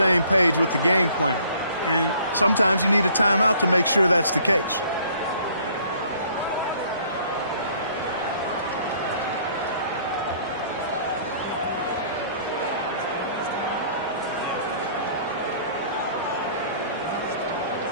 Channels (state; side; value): inverted; both; correlation -0.57